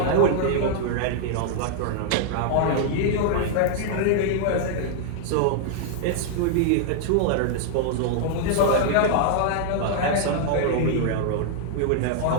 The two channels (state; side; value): different; both; correlation -0.01